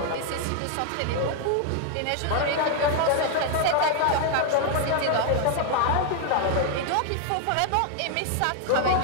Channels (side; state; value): both; different; correlation 0.00